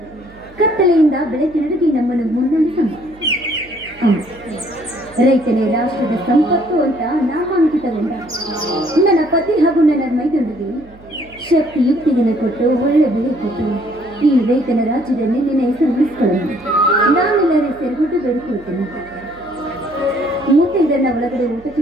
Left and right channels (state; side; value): noise; right; hum, 23 dB below the sound